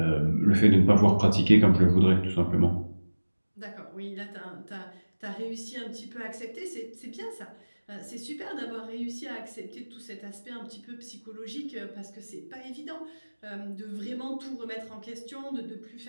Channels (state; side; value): inverted; both; correlation -1.00